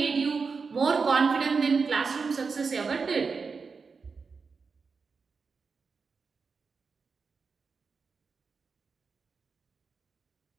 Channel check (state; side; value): quieter; left; 5.0 dB